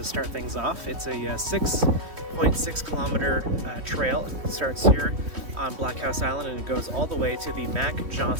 start things off. It's a 6.6 kilometer trail. It starts here on Blockhouse Island and it goes all the way to the Mac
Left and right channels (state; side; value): late; left; 3.2 ms